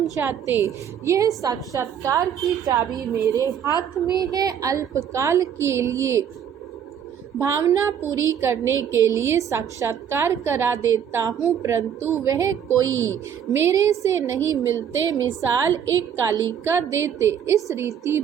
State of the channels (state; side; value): quieter; left; 8.6 dB